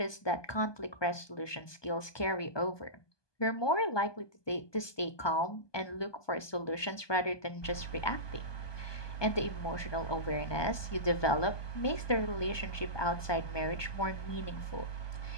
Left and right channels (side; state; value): right; late; 1.2 ms